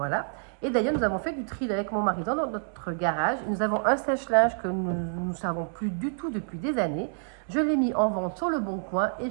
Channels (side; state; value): left; silent; 59 dB below the other